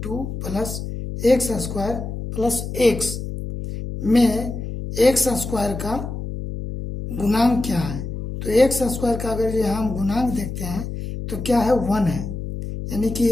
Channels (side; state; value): left; noise; hum, 6 dB below the sound